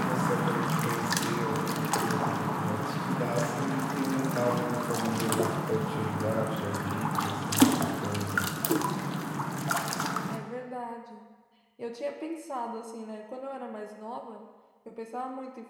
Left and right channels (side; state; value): both; identical; correlation 1.00